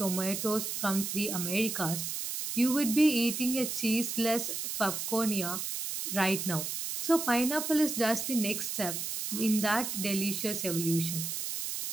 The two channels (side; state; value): right; noise; hiss, 3 dB below the sound